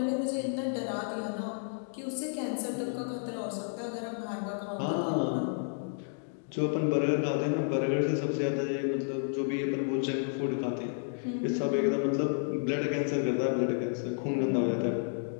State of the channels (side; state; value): right; silent; digital silence